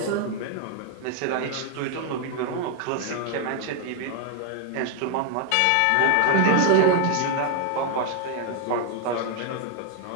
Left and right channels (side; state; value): both; different; correlation 0.00